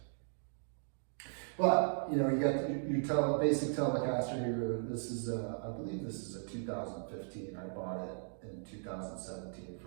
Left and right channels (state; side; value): silent; left; digital silence